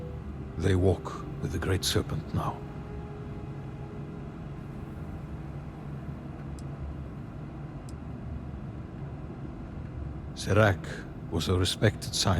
They walk with the Great Serpent now. Serac was a respected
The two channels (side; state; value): both; identical; correlation 1.00